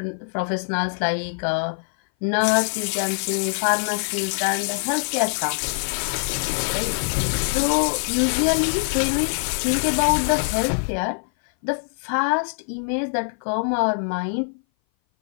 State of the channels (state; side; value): silent; right; 58 dB below the other